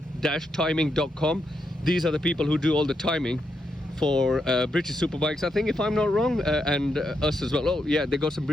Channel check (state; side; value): normal; both; correlation 0.82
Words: timing.com. These are the people who do all the timing for British Superbikes, I think, if I'm not wrong, and us as well. Oh yeah, they got some